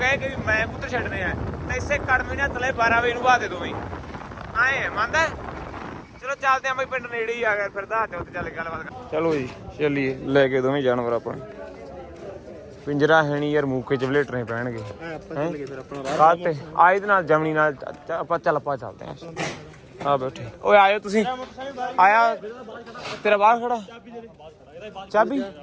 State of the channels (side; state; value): both; identical; correlation 1.00